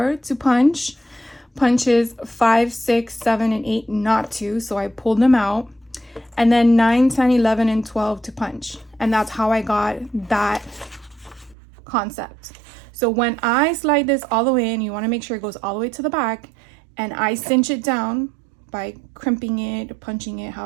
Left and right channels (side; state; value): left; drops out; at 11.6 s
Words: to punch. Punches 5, 6, 7, and 8 not to, so I pulled them out. And then 9, 10, 11, and 12 to punch. And that's how I got that concept. So when I slide this all the way in, you want to make sure it goes all the way to the back, and I cinch it down by crimping it, punching it,